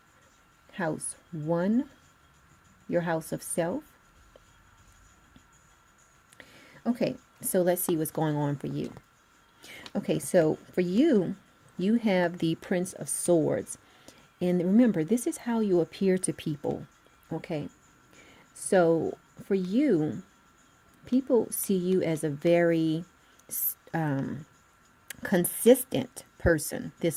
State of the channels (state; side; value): identical; both; correlation 1.00